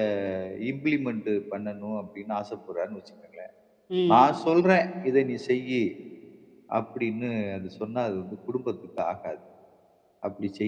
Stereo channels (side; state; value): both; identical; correlation 1.00